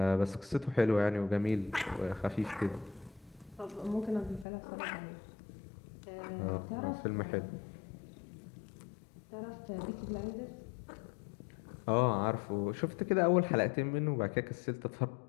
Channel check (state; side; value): drops out; right; at 4.5 s